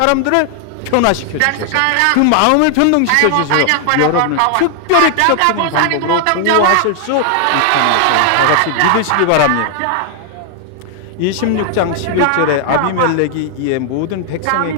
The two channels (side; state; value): both; different; correlation 0.00